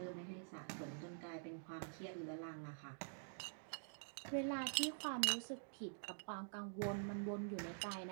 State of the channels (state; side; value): silent; left; digital silence